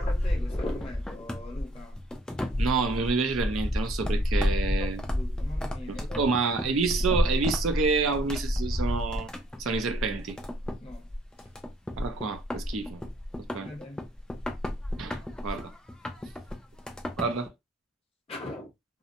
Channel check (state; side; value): normal; both; correlation 0.62